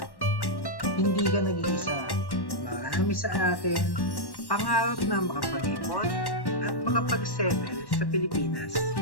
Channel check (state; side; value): late; right; 1.1 ms